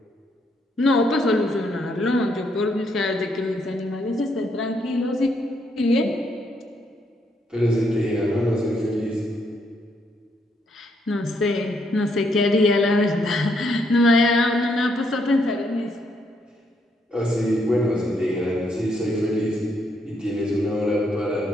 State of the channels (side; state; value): both; normal; correlation 0.74